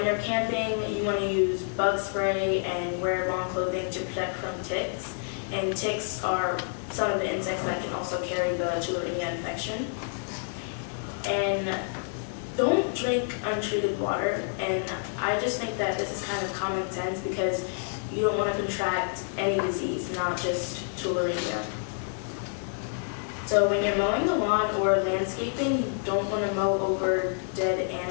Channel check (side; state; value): right; silent; 59 dB below the other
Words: you're camping, you want to use bug spray and wear long clothing to protect from ticks. And ticks are some of the insects that can also carry the Tularemia infection. And don't drink untreated water. And I just think that this is kind of common sense because you don't want to contract any disease, not just tularemia. So when you're mowing the lawn or landscaping, you don't want to mow over dead